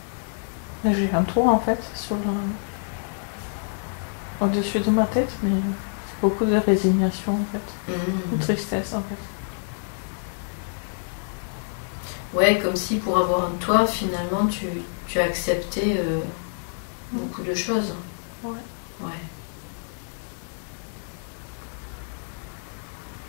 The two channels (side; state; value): right; silent; 61 dB below the other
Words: J'ai un toit, en fait, sur au-dessus de ma tête, mais c'est beaucoup de résignation en fait, de tristesse en fait. Ouais, comme si pour avoir un toit, finalement, tu as accepté beaucoup de choses. Ouais. Ouais.